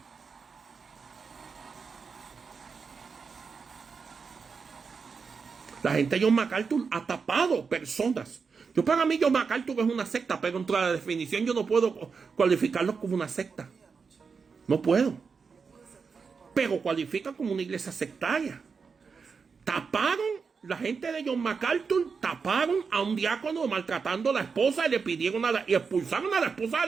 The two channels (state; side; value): quieter; left; 5.4 dB